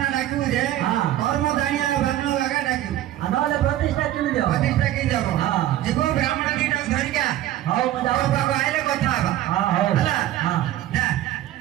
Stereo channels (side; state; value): left; quieter; 13.4 dB